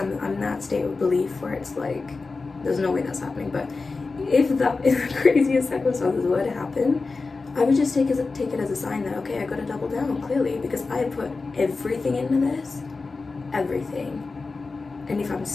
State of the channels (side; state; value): right; quieter; 4.0 dB